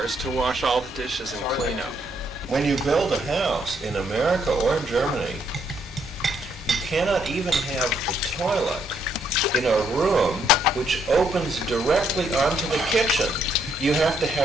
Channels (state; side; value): normal; both; correlation 0.72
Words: to wash all the dishes and clean up. When you build a house in America or in Germany, you cannot even have the toilet in a room which opens directly onto the kitchen. You have to